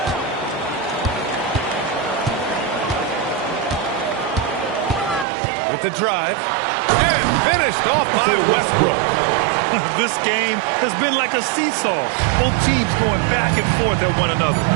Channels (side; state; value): left; drops out; at 5.2 s